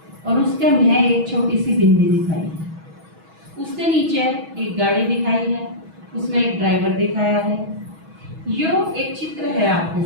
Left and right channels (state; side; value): late; left; 6.2 ms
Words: और उसके में एक छोटी सी बिंदी दिखाई है। उसके नीचे एक गाड़ी दिखाई है, उसमें एक ड्राइवर दिखाया है। यो एक चित्र है आपके